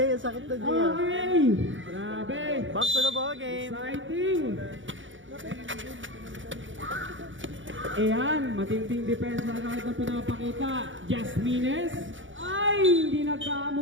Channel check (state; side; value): late; left; 0.56 ms